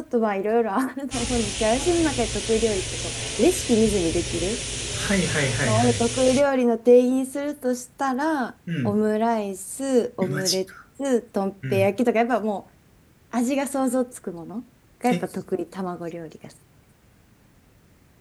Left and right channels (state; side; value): identical; both; correlation 1.00